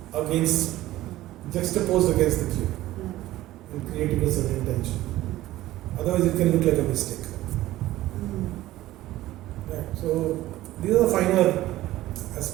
against, juxtaposed against the cube and creating a certain tension. Otherwise it can look like a mistake. Right. So these are the finer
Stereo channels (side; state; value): left; quieter; 15.7 dB